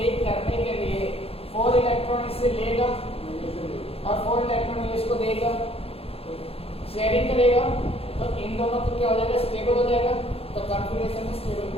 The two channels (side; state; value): right; late; 0.28 ms